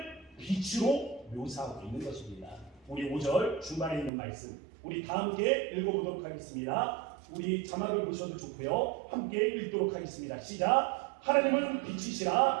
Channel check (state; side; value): drops out; left; at 4.1 s